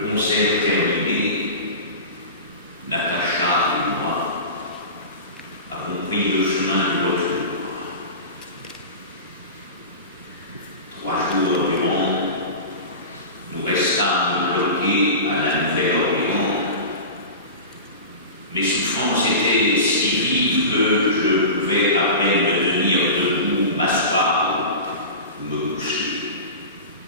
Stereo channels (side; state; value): both; inverted; correlation -0.30